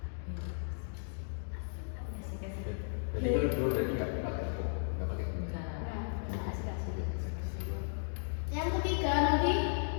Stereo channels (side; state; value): right; silent; digital silence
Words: Jadi kalau dua berarti nggak pakai Enggak. Nah, asik-asik. Yang ketiga nanti